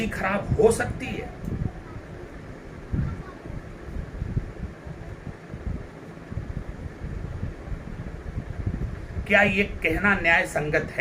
खराब हो सकती है? क्या ये कहना न्याय संगत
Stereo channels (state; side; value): identical; both; correlation 1.00